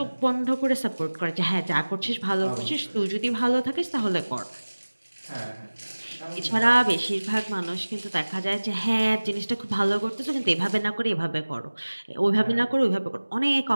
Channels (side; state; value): both; inverted; correlation -1.00